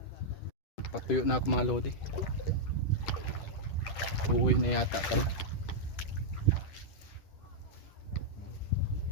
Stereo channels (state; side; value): late; right; 10 ms